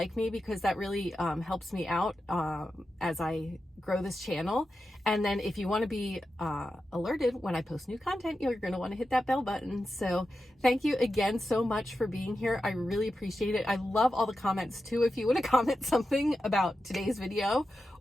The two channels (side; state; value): both; normal; correlation 0.90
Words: me, because that really helps me out as I grow this channel. And then if you want to be alerted when I post new content, you're going to want to hit that bell button. So thank you again so much for being here. I really appreciate it. I love all the comments too. If you want to comment something about today's video